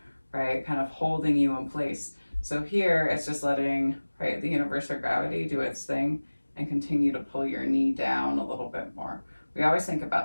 right? Kind of holding you in place. So here it's just letting, right, the universe or gravity do its thing and continue to pull your knee down a little bit more. We always think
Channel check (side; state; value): both; inverted; correlation -1.00